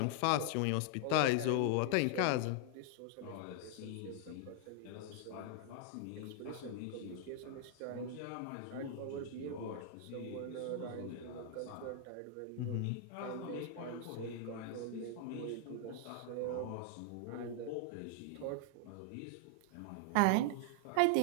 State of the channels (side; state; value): both; different; correlation 0.00